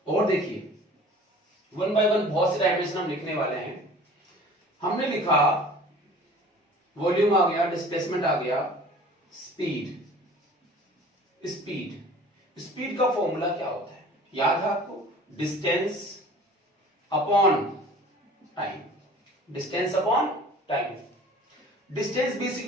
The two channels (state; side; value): normal; both; correlation 0.46